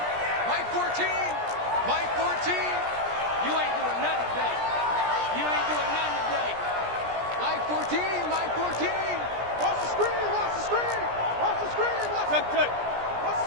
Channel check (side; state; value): left; late; 17 ms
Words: Mike 14. Mike 14. You ain't doing nothing today. You ain't doing nothing today. Mike 14. Mike 14. Watch the screen. Watch the screen. Watch the screen. Watch the screen. Watch